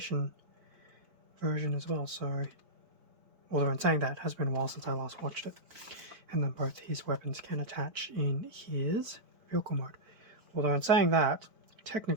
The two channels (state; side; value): late; left; 4.5 ms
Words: version as well, so although in saying that, it has been a while since I last watched it. And then both his weapons can attach in his vehicle mode. Although in saying that,